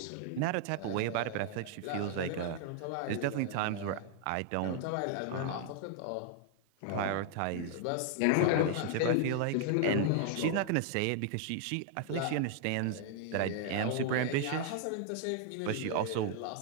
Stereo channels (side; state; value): both; different; correlation 0.00